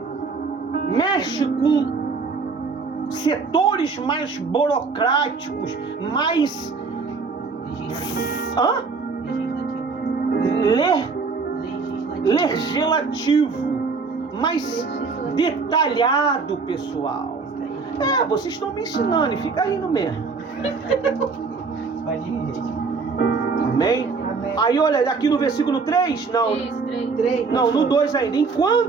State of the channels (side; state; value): left; quieter; 4.6 dB